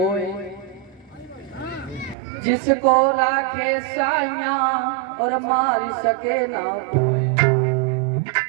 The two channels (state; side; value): drops out; left; at 2.1 s